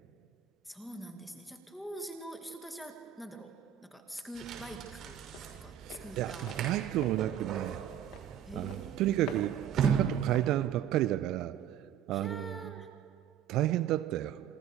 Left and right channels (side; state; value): left; quieter; 10.2 dB